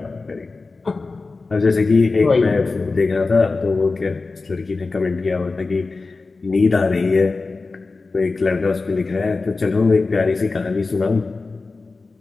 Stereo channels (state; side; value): quieter; right; 3.8 dB